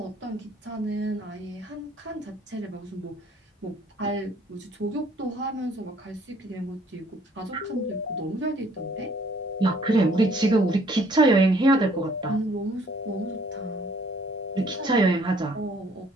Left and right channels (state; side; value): normal; both; correlation 0.60